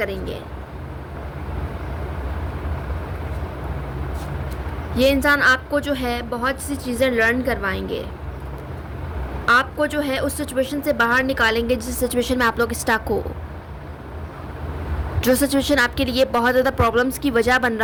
ये इंसान आपको जो है बहुत सी चीज़ें लर्न करवाएंगे, आपको जो है उस सिचुएशन से बाहर निकालेंगे जिस सिचुएशन में आप लोग स्टक हो, जो सिचुएशन आपके लिए बहुत ज़्यादा प्रॉब्लम्स की वजह बन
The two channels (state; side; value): identical; both; correlation 1.00